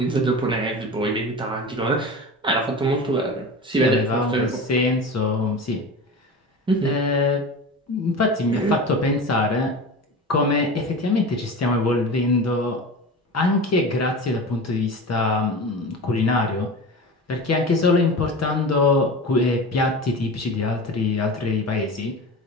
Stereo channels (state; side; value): normal; both; correlation 0.30